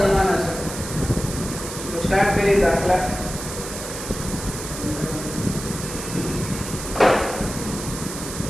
છે. તો સ્ટાર્ટ કરીએ દાખલા.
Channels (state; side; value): noise; right; hiss, 8 dB below the sound